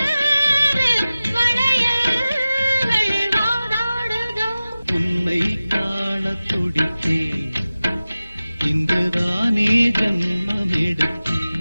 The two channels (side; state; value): both; inverted; correlation -0.96